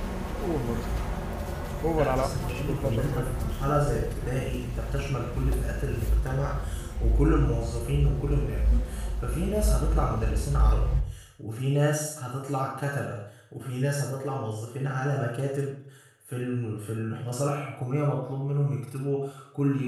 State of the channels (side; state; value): both; identical; correlation 1.00